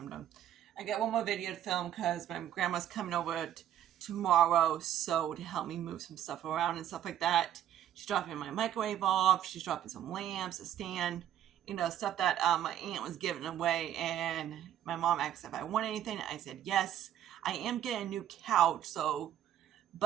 done. I got one more video to film because my grandma's coming over tomorrow, so to help me move some stuff around and stuff like that. She's dropping my microwave off. She's dropping some lamps, a stand, stuff that my aunt was giving away. And my mom asked if I want anything. I said yes. I am getting a new couch,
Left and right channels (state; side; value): quieter; left; 11.0 dB